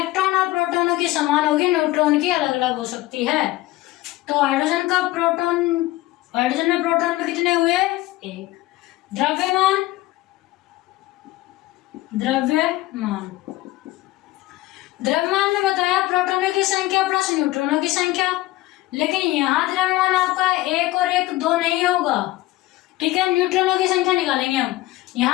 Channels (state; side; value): quieter; right; 17.6 dB